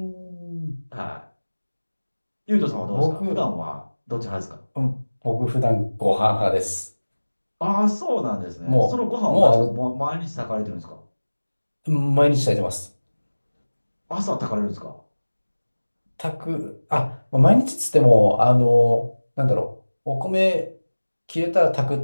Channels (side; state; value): both; inverted; correlation -1.00